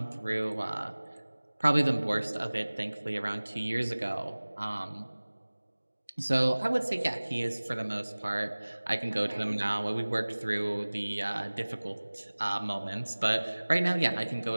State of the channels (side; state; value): both; inverted; correlation -1.00